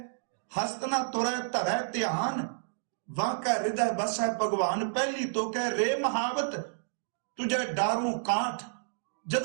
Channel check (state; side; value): silent; left; digital silence